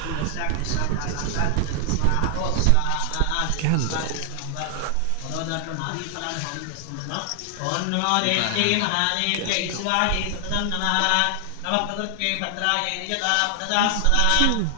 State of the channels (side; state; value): both; different; correlation 0.00